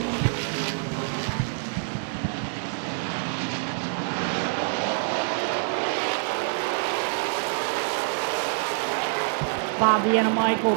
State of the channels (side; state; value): left; silent; digital silence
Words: Bob the Animal